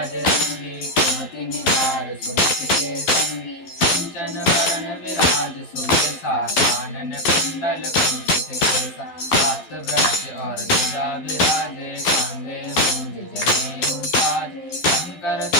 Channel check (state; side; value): late; right; 12 ms